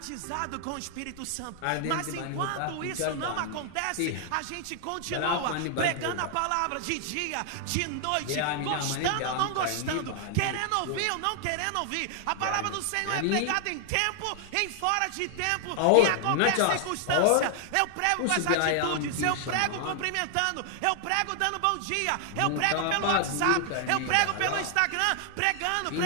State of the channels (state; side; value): different; both; correlation 0.00